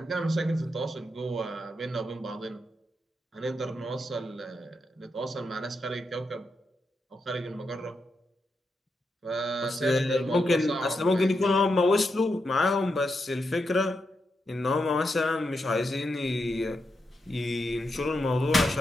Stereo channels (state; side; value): normal; both; correlation 0.84